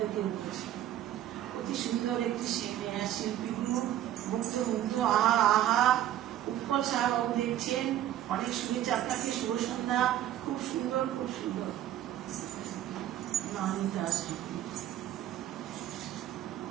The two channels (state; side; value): quieter; left; 12.2 dB